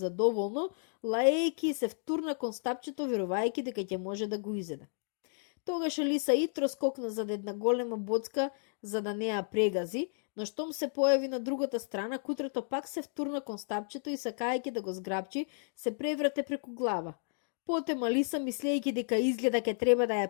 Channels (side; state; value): right; silent; digital silence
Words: лаејќи и се втурна кон стапчето верувајќи дека ќе може да го изеде. Тогаш Алиса итро скокна зад една голема боцка за да не ја прегази, но штом се појави на другата страна, кутрето пак се втурна кон стапчето и сакајќи да го зграбчи, се преврате преку глава. Потем Алиса, мислејќи дека изгледа ке треба да